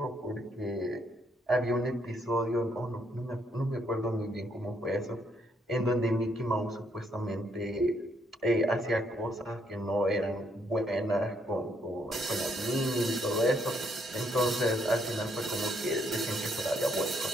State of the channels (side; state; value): both; normal; correlation 0.72